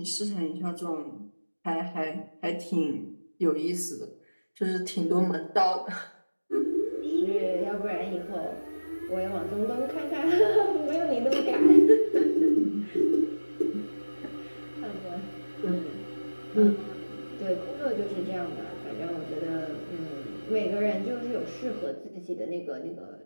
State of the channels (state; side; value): inverted; both; correlation -1.00